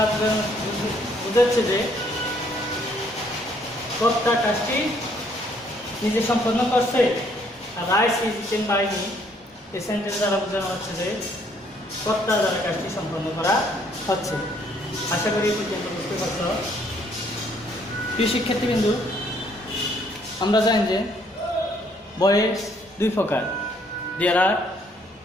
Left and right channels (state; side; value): normal; both; correlation 0.66